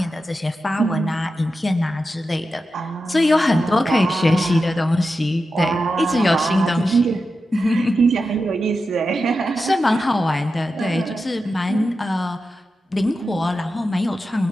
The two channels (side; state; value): both; normal; correlation 0.90